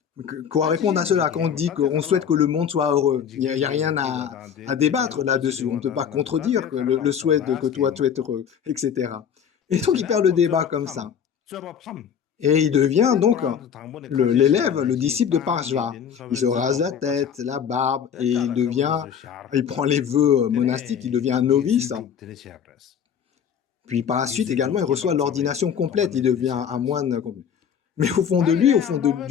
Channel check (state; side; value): quieter; right; 8.0 dB